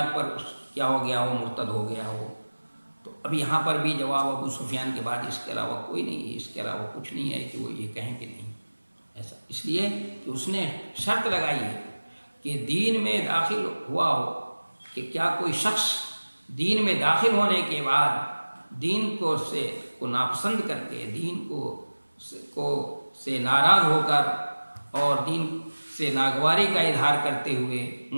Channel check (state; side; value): inverted; both; correlation -1.00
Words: پر کیا ہو گیا ہو، مرتد ہو گیا ہو. تو اب یہاں پر بھی جواب ابو سفیان کے بعد اس کے علاوہ کوئی نہیں ہے، اس کے علاوہ کچھ نہیں ہے کہ وہ یہ کہیں کہ نہیں ایسا، اس لیے کہ اس نے شرط لگائی ہے کہ دین میں داخل ہوا ہو، کہ کیا کوئی شخص دین میں داخل ہونے کے بعد دین کو ناپسند کر کے، دین کو سے ناراض ہو کر اور دین سے ناگواری کا اظہار کرتے ہوئے